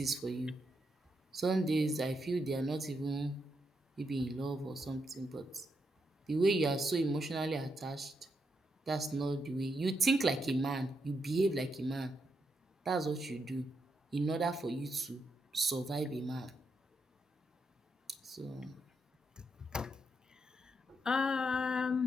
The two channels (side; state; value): both; normal; correlation 0.81